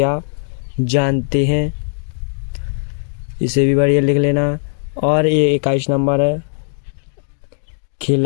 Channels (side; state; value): right; silent; digital silence